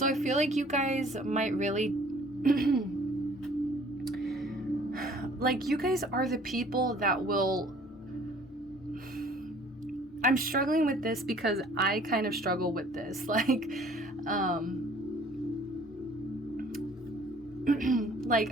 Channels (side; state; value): both; normal; correlation 0.54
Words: I feel like you guys might really like, you guys are the people that will, I'm struggling with this because I kind of struggle with this. Like, like,